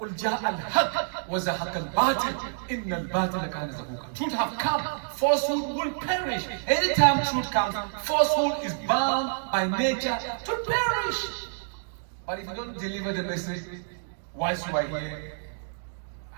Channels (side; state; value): left; silent; digital silence